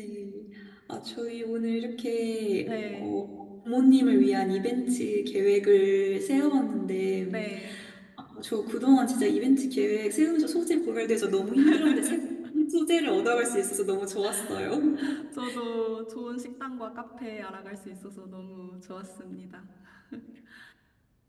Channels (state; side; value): identical; both; correlation 1.00